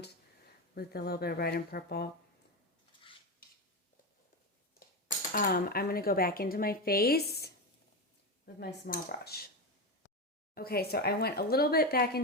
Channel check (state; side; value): normal; both; correlation 0.16